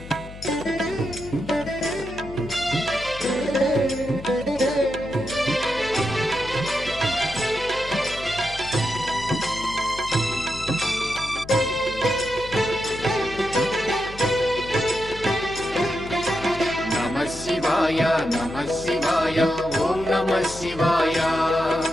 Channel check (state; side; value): noise; left; hum, 15 dB below the sound